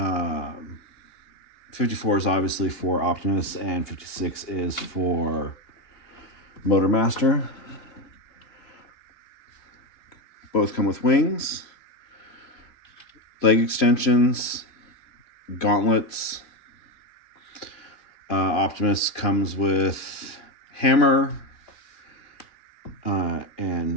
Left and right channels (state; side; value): late; right; 2.9 ms